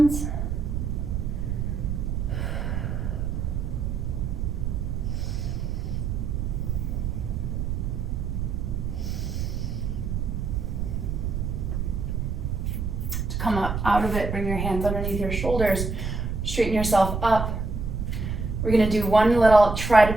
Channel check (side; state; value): right; noise; rumble, 2 dB below the sound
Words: To come up out of it, bring your hands underneath your shoulders, straighten yourself up. We're going to do one little try to